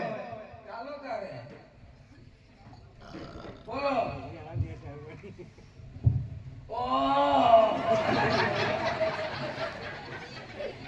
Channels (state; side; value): identical; both; correlation 1.00